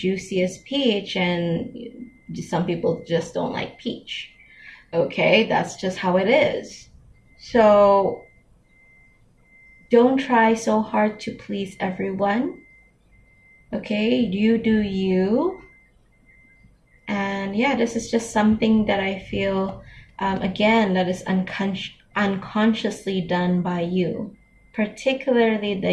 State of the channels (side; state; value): both; identical; correlation 1.00